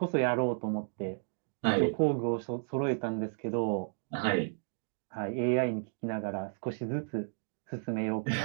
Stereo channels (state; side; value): silent; left; digital silence